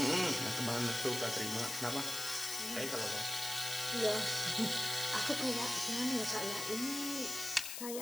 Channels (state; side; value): noise; left; hiss, 5 dB below the sound